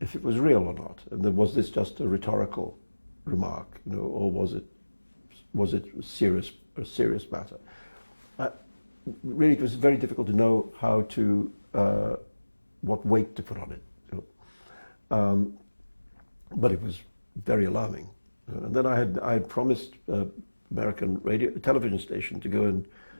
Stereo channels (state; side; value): inverted; both; correlation -1.00